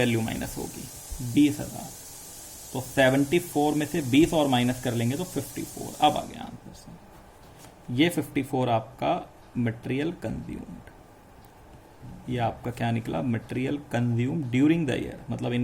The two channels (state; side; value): identical; both; correlation 1.00